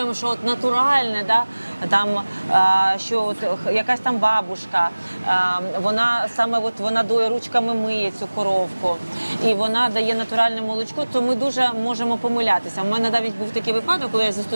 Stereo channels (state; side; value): inverted; both; correlation -1.00